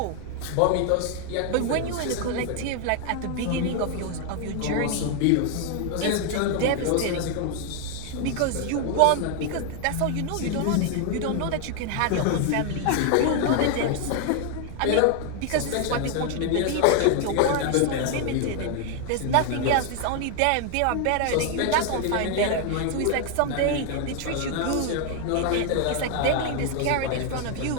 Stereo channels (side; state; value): both; different; correlation 0.00